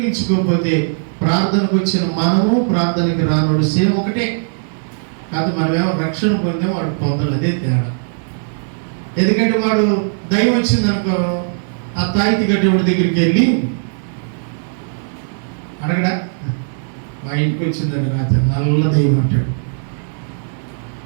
ప్రార్థనకు వచ్చిన మనము ప్రార్థనకి రానోడు సేమ్ ఒకటే కాదు. మనమేమో రక్షణ పొందాం, వాడు పొందలు, అదే తేడా. ఎందుకంటే వాడు దైవం వచ్చిందనుకో, ఆ తాయితి గడ్డేవాడి దగ్గరికి వెళ్ళి అడగడా, మా ఇంటికి వచ్చిందని రాత్రి నల్ల దైవం అంటాడు,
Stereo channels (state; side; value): silent; left; digital silence